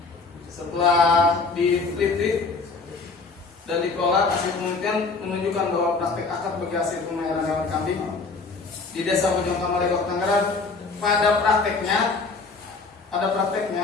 Setelah diteliti dan dikelola, hasil penelitian menunjukkan bahwa praktek akad bagi hasil pemeliharaan hewan kambing di Desa Bojongkama, Lebok, Tangerang pada prakteknya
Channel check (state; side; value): quieter; right; 4.1 dB